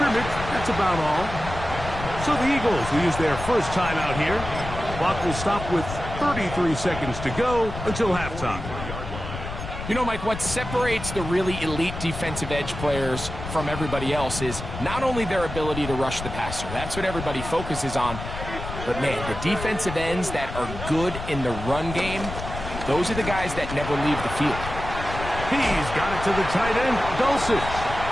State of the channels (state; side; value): noise; left; rumble, 8 dB below the sound